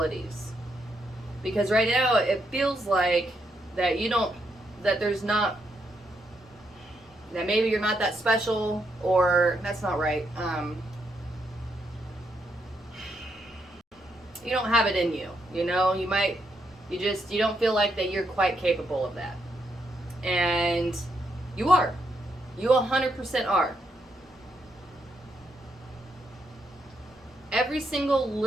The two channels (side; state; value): both; normal; correlation 0.79